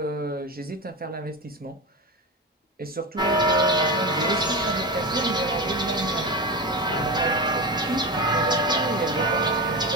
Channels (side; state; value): both; normal; correlation 0.20